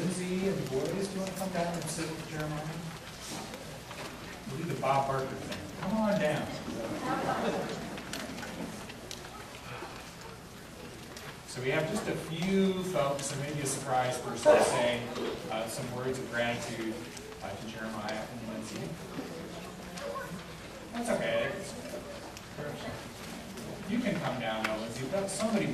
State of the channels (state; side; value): identical; both; correlation 1.00